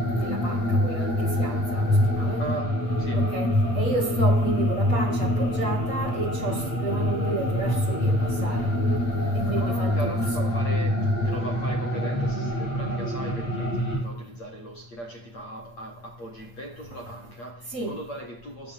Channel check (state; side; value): late; right; 8.6 ms